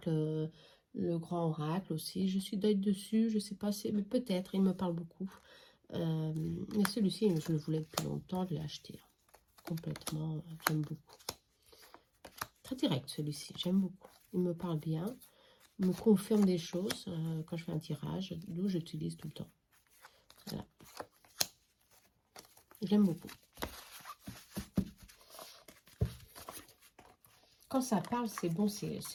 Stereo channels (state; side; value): identical; both; correlation 1.00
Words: le grand oracle aussi. Je suis d'œil dessus, je sais pas, mais peut-être, il me parle beaucoup. Mais celui-ci, je le voulais depuis longtemps, je l'ai acheté. Complètement, j'aime beaucoup. Très direct celui-ci, j'aime beaucoup. Il me parle bien, il me confirme des choses quand je fais un tirage, d'où j'utilise tout le temps. Voilà. J'aime beaucoup. Quand ça parle, c'est bon, c'est